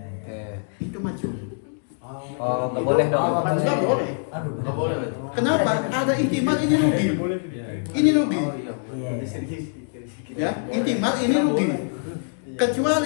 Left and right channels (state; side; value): silent; right; digital silence